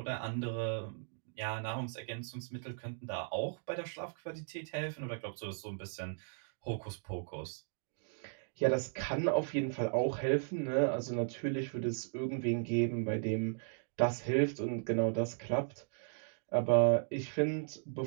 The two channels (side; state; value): left; silent; digital silence